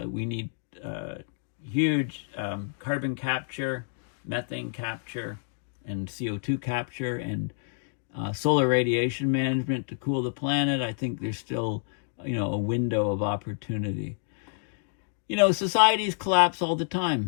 we need huge carbon capture, methane capture, and CO2 capture, and solar radiation management to cool the planet. I think there's still, a window of opportunity. Societies collapse all the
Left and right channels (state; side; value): silent; right; digital silence